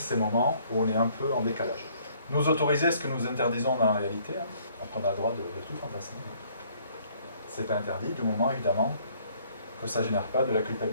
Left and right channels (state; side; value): inverted; both; correlation -0.62